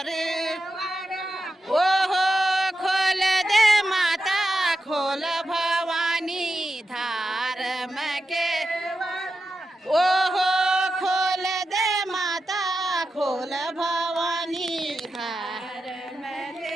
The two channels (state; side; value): normal; both; correlation 0.90